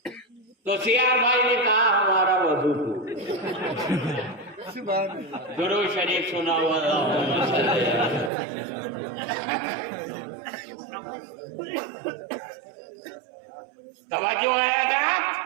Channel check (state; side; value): drops out; left; at 8.3 s